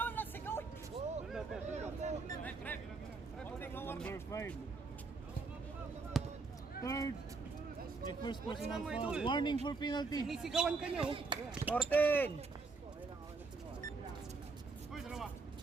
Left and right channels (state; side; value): quieter; left; 4.2 dB